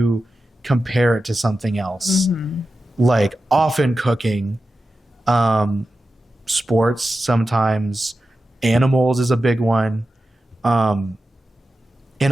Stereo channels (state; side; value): normal; both; correlation 0.92